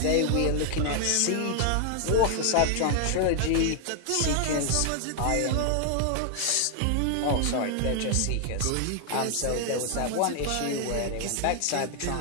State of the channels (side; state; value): both; different; correlation 0.00